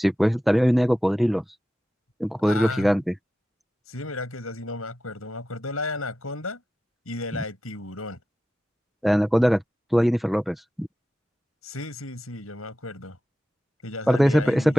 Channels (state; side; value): normal; both; correlation 0.92